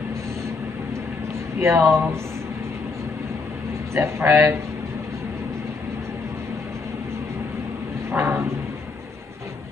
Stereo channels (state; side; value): quieter; right; 4.2 dB